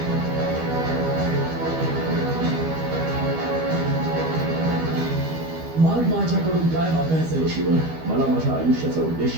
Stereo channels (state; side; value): late; left; 12 ms